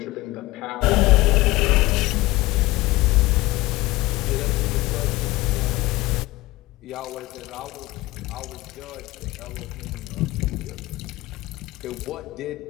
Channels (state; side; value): quieter; right; 19.6 dB